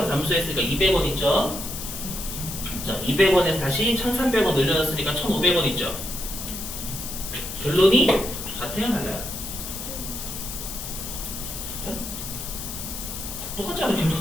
감소했으니까 200원 있죠. 자, 200원에서 다시 1,300원 늘려놨으니까 1,500원 있죠. 결론이 같아요, 달라요? 똑같잖아요.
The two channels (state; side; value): noise; left; hiss, 7 dB below the sound